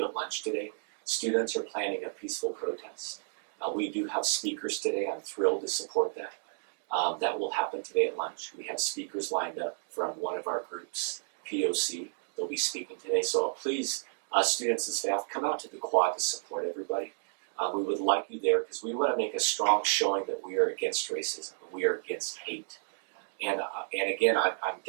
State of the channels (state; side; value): silent; left; digital silence